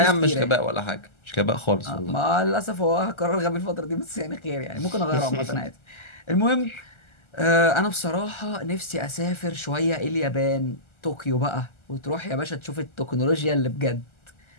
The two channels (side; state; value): right; late; 1.3 ms